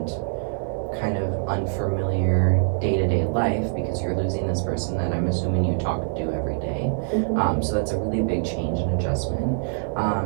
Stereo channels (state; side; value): silent; left; 57 dB below the other